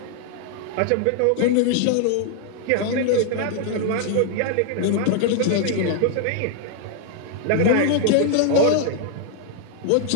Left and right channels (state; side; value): different; both; correlation 0.00